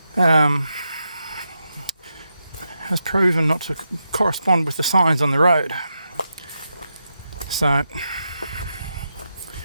has proven not to correspond with the signs on the road. So I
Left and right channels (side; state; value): both; inverted; correlation -0.86